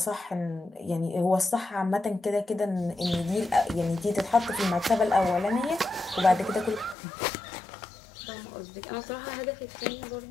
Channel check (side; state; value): right; drops out; at 7.0 s